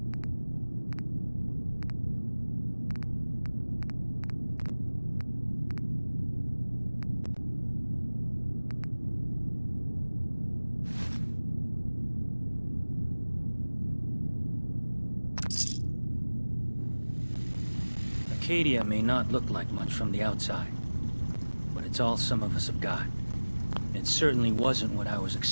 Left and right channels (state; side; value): inverted; both; correlation -1.00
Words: Acadia may not look like much from the outside, but it's all some of us have got. It certainly wasn't what I was